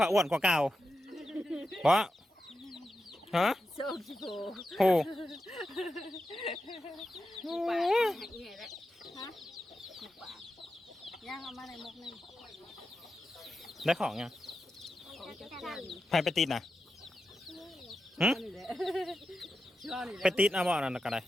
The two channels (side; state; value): both; normal; correlation 0.90